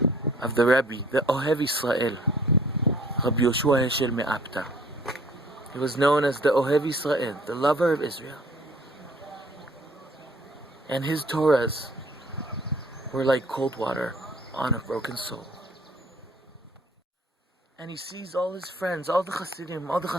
of the Rebbe, the Ohev Yisrael, Rabbi Yoshua Heschel Me'apta. He was known as the Ohev Yisrael, the lover of Israel. And his Torahs were like cold water on a broken soul. And he sees all his friends, all the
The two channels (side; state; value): both; normal; correlation 0.55